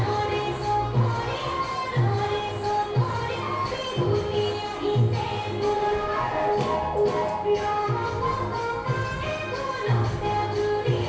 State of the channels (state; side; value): identical; both; correlation 1.00